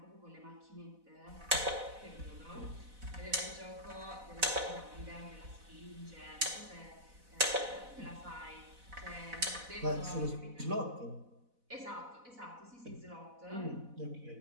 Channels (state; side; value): late; left; 4.0 ms